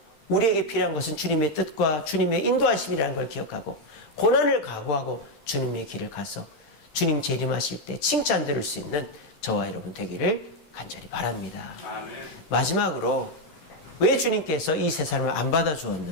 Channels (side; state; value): right; late; 13 ms